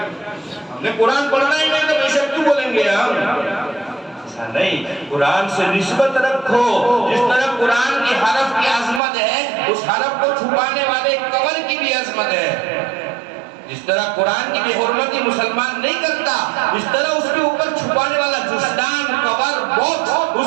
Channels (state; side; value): drops out; left; at 9.0 s